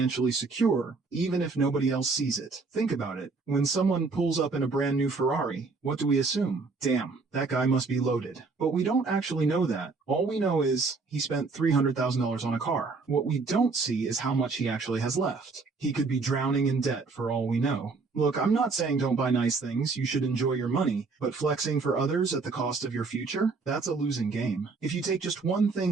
secure, even if nobody else sees it. Think about it. When someone pulls up in a brand new Ferrari, what do we assume? Damn, that guy must be loaded. But we don't actually know that. All we know is he spent $300,000 on a car. What we don't see is how much he actually has left. He could be drowning in debt for all we know. Look, I'm not saying don't buy nice things, you should enjoy your money, but flexing for others at the cost of your future? That's a losing game. If you take just one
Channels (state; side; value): quieter; left; 4.2 dB